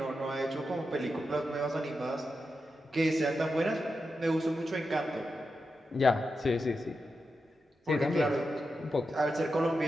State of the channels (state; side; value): normal; both; correlation 0.88